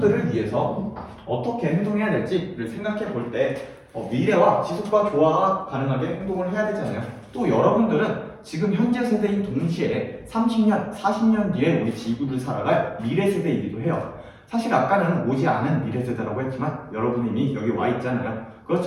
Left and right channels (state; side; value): identical; both; correlation 1.00